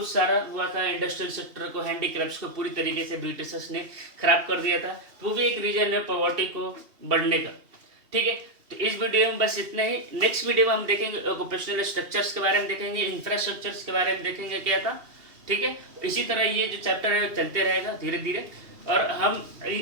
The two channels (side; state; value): left; late; 2.8 ms